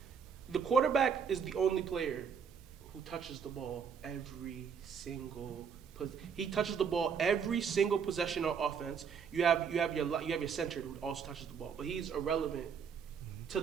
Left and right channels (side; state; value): left; quieter; 6.6 dB